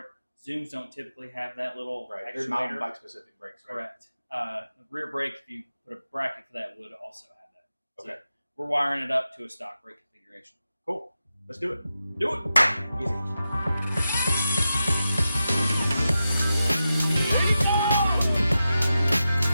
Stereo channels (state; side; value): inverted; both; correlation -0.90